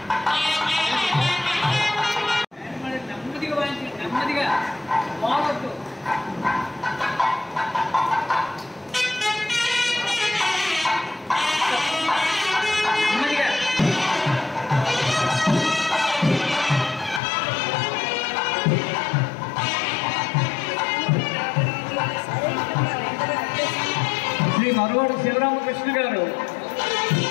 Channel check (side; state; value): right; drops out; at 17.2 s